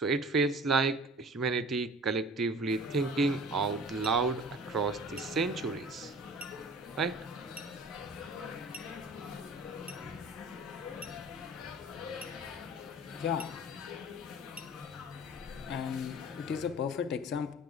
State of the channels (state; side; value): normal; both; correlation 0.44